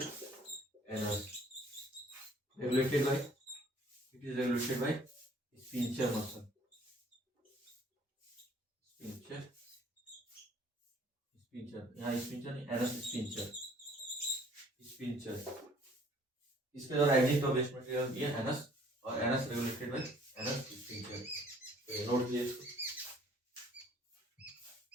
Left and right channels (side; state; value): both; normal; correlation 0.57